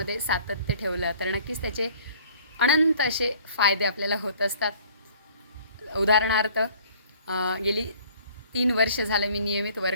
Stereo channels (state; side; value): inverted; both; correlation -0.53